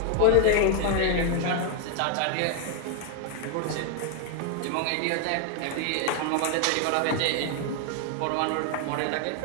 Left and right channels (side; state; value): both; different; correlation 0.01